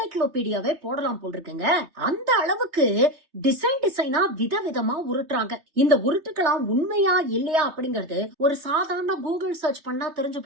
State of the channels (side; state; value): left; late; 3.2 ms